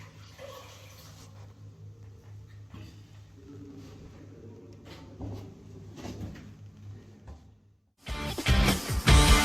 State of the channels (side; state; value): both; identical; correlation 1.00